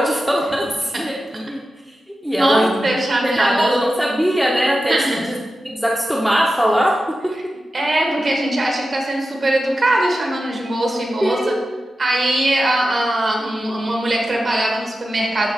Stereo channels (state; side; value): normal; both; correlation 0.92